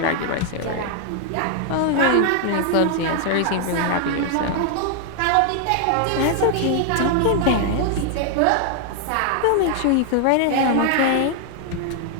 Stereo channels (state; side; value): different; both; correlation 0.00